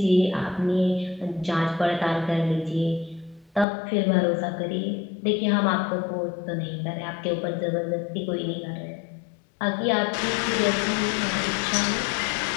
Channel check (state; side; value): drops out; right; at 3.7 s